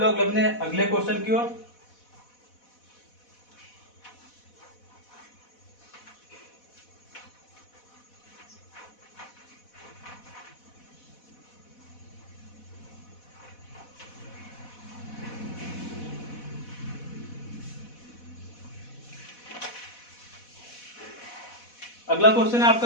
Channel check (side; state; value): right; late; 4.1 ms